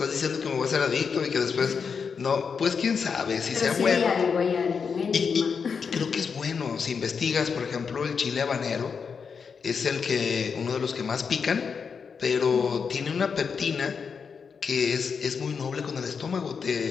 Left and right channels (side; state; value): right; quieter; 5.9 dB